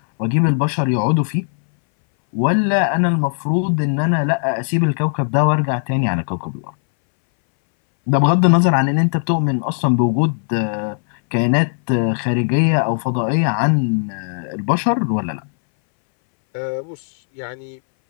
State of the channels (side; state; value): right; silent; 64 dB below the other